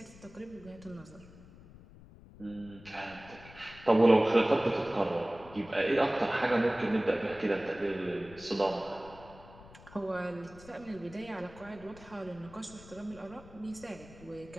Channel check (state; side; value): noise; left; rumble, 20 dB below the sound